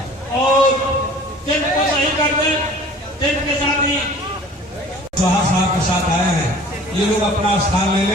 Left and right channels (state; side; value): normal; both; correlation 0.47